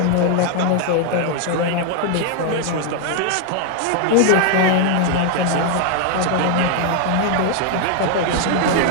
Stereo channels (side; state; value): both; different; correlation 0.00